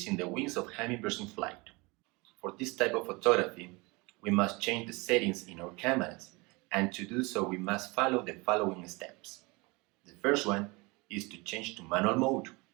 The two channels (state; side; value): quieter; left; 25.9 dB